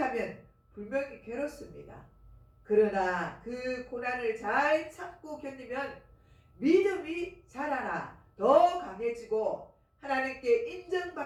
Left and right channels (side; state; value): both; identical; correlation 1.00